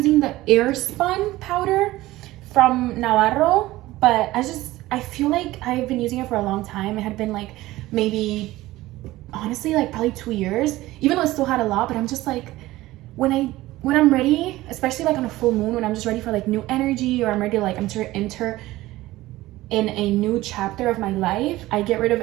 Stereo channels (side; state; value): left; quieter; 17.4 dB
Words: the Airspun powder from Navarro, but I feel like I've been using it for a long time. It had been like maybe, honestly, like probably 2 years, even though it still had a lot. But I'm just like, when I'm ready, especially like on a full moon, when I'm just ready for like new energy, or I'm ready to like enter in a new chapter of my life, I get rid of